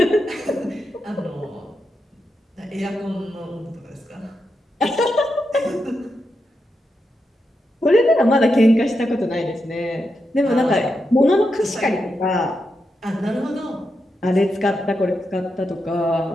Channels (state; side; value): normal; both; correlation 0.86